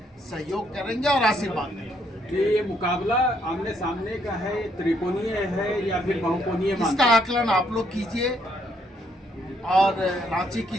सहयोग करेंगे और आशीर्वाद देंगे। कि ये मुकाबला आमने सामने का है, त्रिकोणीय है या फिर बहुकोणीय? इसका आकलन आप लोग कीजिए और रांची की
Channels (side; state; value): both; normal; correlation 0.72